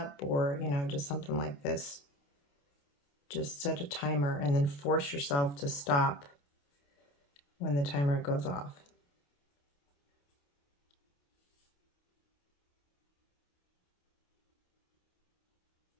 or just something like this. Just set a timer and then force yourself to stop when the timer goes off.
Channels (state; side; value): late; right; 28 ms